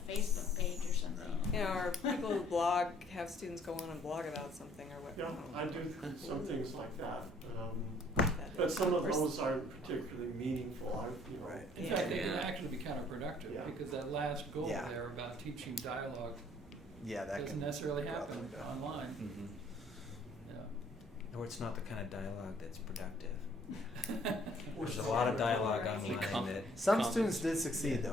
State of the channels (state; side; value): normal; both; correlation 0.60